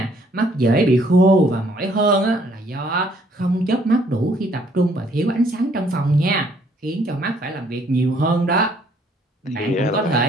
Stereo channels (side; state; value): both; normal; correlation 0.64